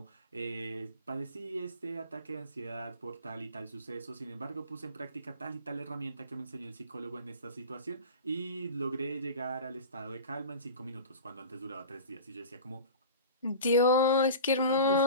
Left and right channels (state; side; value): inverted; both; correlation -0.36